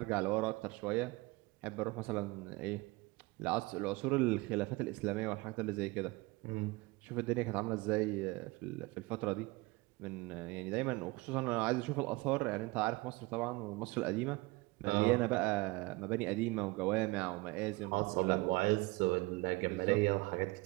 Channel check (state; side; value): quieter; left; 23.2 dB